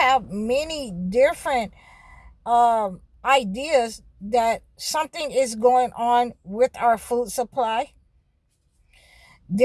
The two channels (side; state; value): both; identical; correlation 1.00